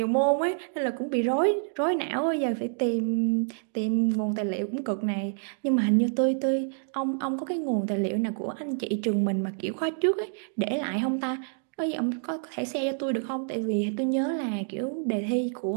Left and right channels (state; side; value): silent; left; digital silence